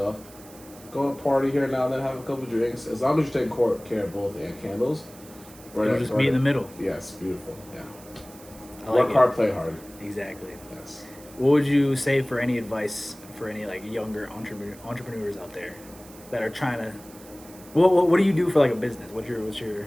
Go to a party here now and then, have a couple drinks. As long as you're taking care of both and candles. It'll just meet in the middle. Yes, beautiful. Yeah. I like Work it. hard, play hard. Exactly. Yes. What would you say for any advice for any younger entrepreneurs out there that are trying to? What do you do for a business? What's your?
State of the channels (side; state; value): right; noise; hiss, 21 dB below the sound